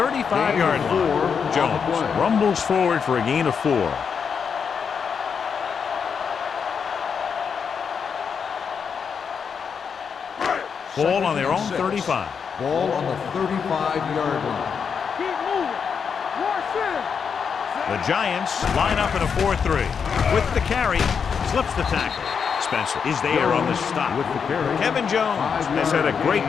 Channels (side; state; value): right; quieter; 6.5 dB